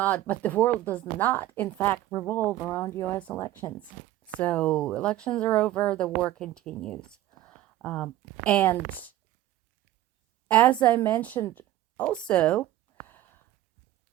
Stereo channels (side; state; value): left; quieter; 14.3 dB